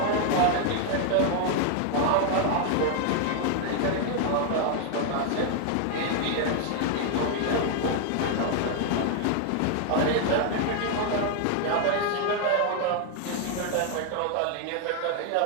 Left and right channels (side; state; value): both; different; correlation 0.00